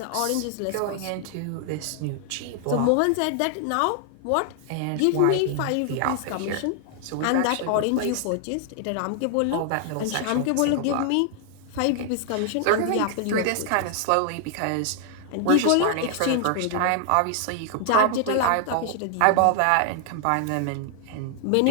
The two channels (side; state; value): both; different; correlation 0.00